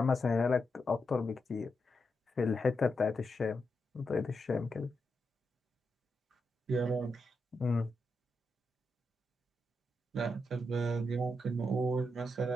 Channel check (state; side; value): normal; both; correlation 0.85